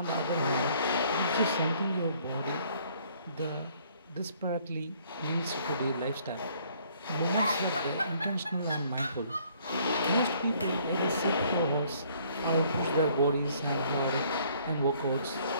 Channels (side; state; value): both; inverted; correlation -0.62